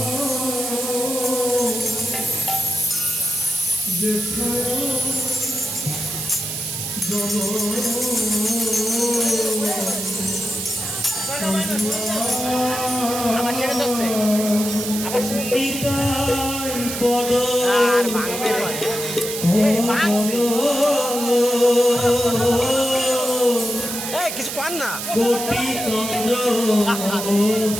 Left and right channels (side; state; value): right; noise; hiss, 5 dB below the sound